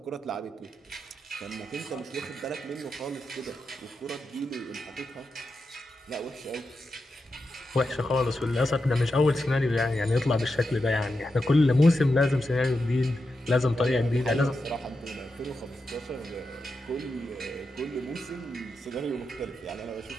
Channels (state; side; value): normal; both; correlation 0.88